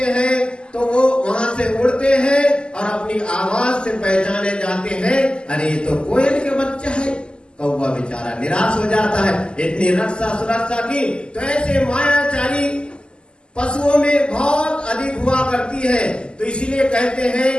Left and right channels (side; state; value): right; late; 0.049 ms